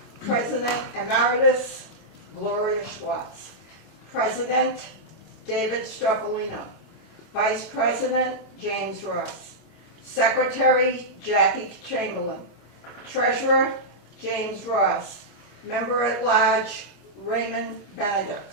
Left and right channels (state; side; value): late; right; 25 ms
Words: President Emeritus Gloria Schwartz, President David Stropolino, Vice President James Ross, Secretary Jackie Chamberlain, Treasurer James Ross, Member at Large Raymond